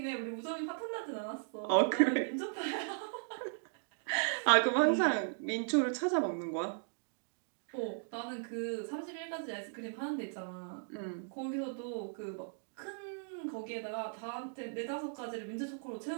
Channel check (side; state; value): left; silent; digital silence